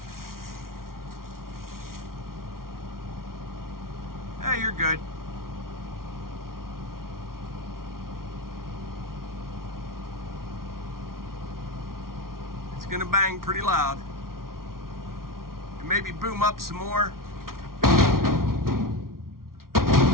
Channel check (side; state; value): left; late; 0.93 ms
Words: Hey, you're good. It's gonna bang pretty loud. And maybe boom up some more.